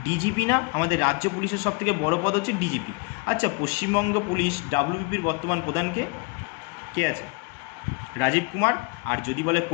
ডিজিপি না? আমাদের রাজ্য পুলিশের সবথেকে বড় পদ হচ্ছে ডিজিপি। আচ্ছা, পশ্চিমবঙ্গ পুলিশ ডাব্লিউবিপির বর্তমান প্রধানকে কে আছে? রাজীব কুমার। আর যদি বলে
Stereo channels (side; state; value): right; quieter; 28.6 dB